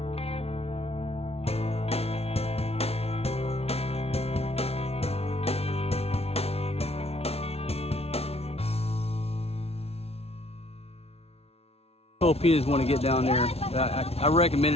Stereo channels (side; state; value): right; late; 0.30 ms